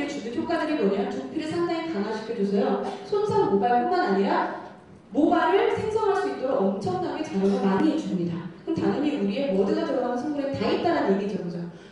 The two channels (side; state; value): both; identical; correlation 1.00